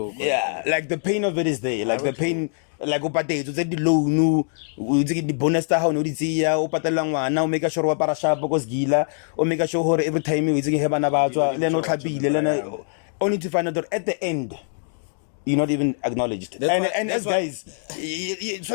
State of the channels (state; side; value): silent; right; digital silence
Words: Yeah, like the pain of it is there. Like the pain, like the loan, the bonus how no now make sure wa para sharp because gila or make sure every time you have an about only to find out that at the end you're not even acknowledged. And as guys,